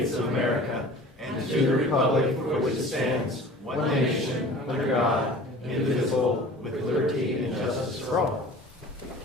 of America and to the republic for which it stands, one nation, under God, indivisible, with liberty and justice for all.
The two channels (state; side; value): normal; both; correlation 0.43